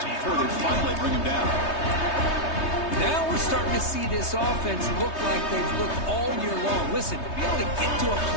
before they finally bring him down. Now we're starting to see this offense look like they've looked all year long. Listen, to be able to get to a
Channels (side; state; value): right; late; 3.2 ms